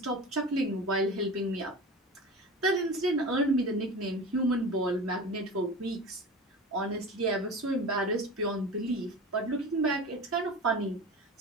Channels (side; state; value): both; normal; correlation 0.32